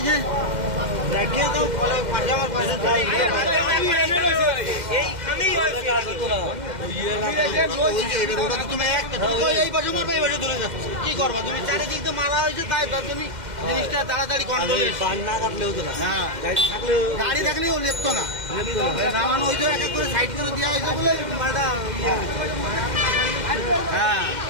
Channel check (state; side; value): late; left; 2.1 ms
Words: দেখে তো আমার পাশে যাই কি করবা তুমি? চারিদিক তো মালা হয়েছে, তাই তুমি জিনিসটা তাড়াতাড়ি কন্ট্রোল না কাটলে হতো না। গাড়ি থাকলেও লেপতো না, নামানো হয়েছে এক এক করে সাইড করে দেওয়া হয়েছে বলে মালটা। হ্যাঁ